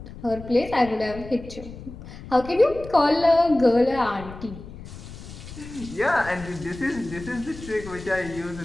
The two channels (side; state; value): left; noise; rumble, 14 dB below the sound